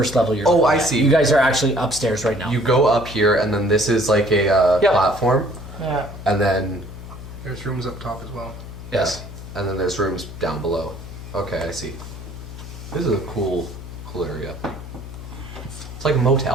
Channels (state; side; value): noise; left; hum, 12 dB below the sound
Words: level you're Oh, looking I at. see. You guys are actually upstairs right now. You go up here, and then this is like a Yep. platform, Yeah. and then There's rooms up top as well. Yes. and then there's rooms down below. Okay, I see. This is a cool area. It's like a